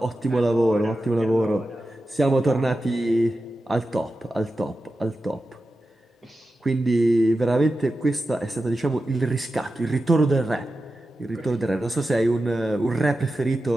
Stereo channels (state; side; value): normal; both; correlation 0.92